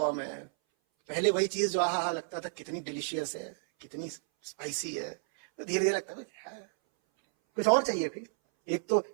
है। पहले वही चीज जो आहा लगता था कितनी डिलीशियस है, कितनी स्पाइसी है, तो धीरे धीरे लगता है कुछ और चाहिए। फिर एक तो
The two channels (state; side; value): silent; left; 57 dB below the other